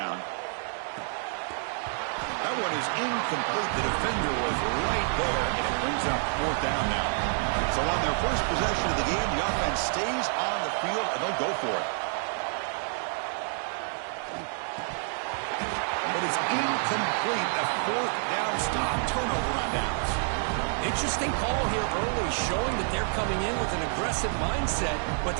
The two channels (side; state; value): left; silent; 55 dB below the other